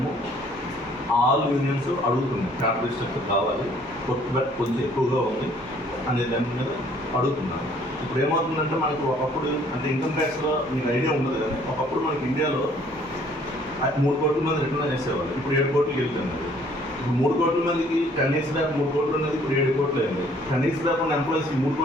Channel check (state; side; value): normal; both; correlation 0.60